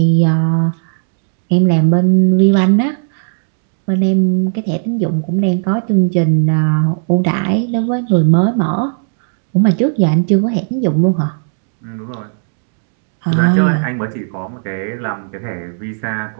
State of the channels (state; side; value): silent; left; 70 dB below the other